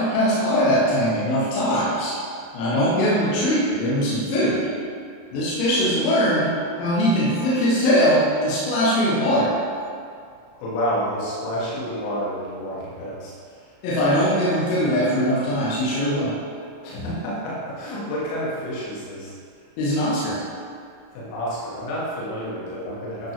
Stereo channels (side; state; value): right; late; 35 ms